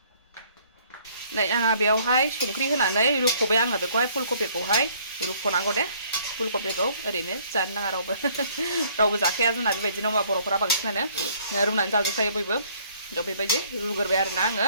नै आंहा बेयावहाय संख्रि होनानै रुख'बाय आङो बेखौहाय फुलकबिखौहाय रुख'नांगौ दे फुलकबिखौ ओरैनो जानो नाङा रावबो जाखाया जोंना बेबायदिनो बर'फोरा बांसिनानो रुनानै जाजोबखायो बयबो थ' बेबायदि रुग्रोबाय आरोना आङो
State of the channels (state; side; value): inverted; both; correlation -0.61